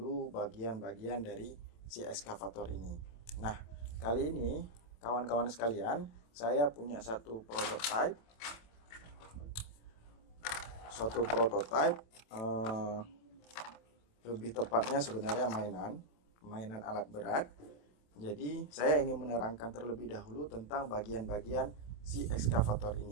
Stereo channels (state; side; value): late; right; 27 ms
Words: bagian-bagian dari si ekskavator ini. Nah, kali ini kawan-kawan sekalian, saya punya suatu prototipe, lebih tepatnya sebenarnya mainan alat berat. Jadi saya ingin menerangkan terlebih dahulu tentang bagian-bagian si ekskavator